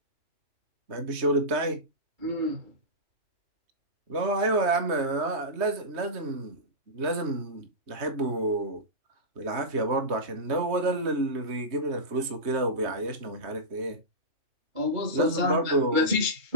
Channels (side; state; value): left; late; 3.2 ms